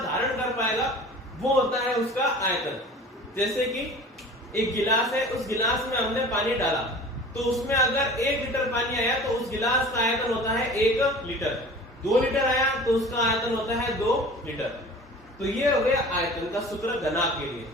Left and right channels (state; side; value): normal; both; correlation 0.41